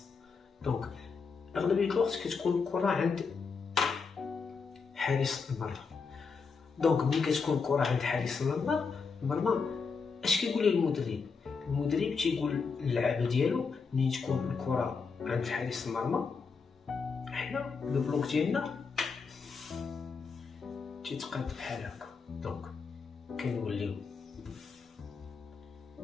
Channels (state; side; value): quieter; right; 5.2 dB